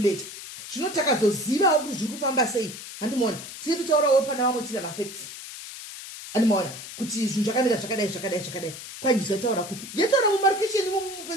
Zvino takazozivawo kuti zviri kufamba sei. Handimoona. Tiri kutaurawo pana vamwe tiri mafacts. Handimoona kuti zvinhu zvakamira zvakadai. Kwanjisa taura kupi? Yataura mumarkation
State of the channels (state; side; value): noise; left; hiss, 12 dB below the sound